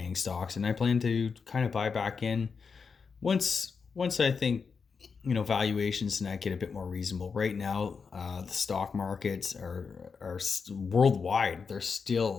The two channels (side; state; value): right; quieter; 5.5 dB